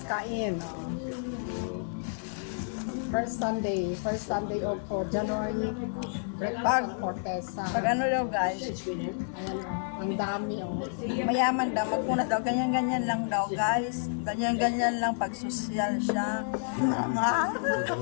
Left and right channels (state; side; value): silent; right; digital silence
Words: kain. First Sunday of January. Breakfast for Tessa. Pag ano daw guys. Ayan, ang dami oh. Mayaman daw. Magpuna daw. Ganyan-ganyan lang daw guys. Ganyan-ganyan lang pag social siya.